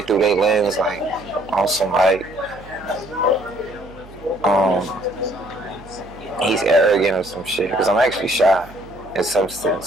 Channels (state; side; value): noise; right; hum, 20 dB below the sound